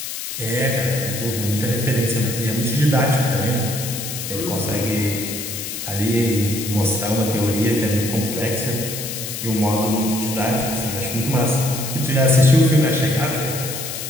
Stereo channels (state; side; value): noise; left; hiss, 6 dB below the sound